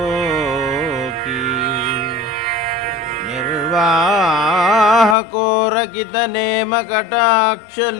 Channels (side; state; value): right; drops out; at 5.2 s